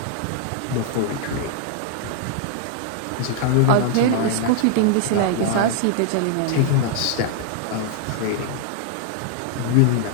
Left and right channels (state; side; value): different; both; correlation 0.00